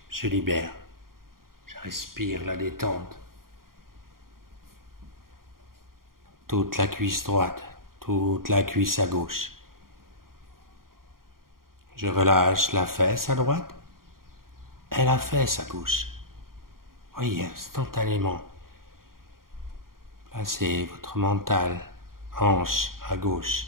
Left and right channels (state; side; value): late; left; 0.92 ms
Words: se libèrent. Je respire la détente. Toute la cuisse droite, toute la cuisse à gauche. Je relâche la fesse à droite et la fesse à gauche. Voyez, instantanément. Placez votre mental, hanche à gauche.